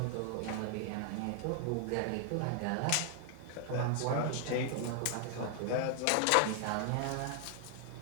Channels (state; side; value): different; both; correlation 0.00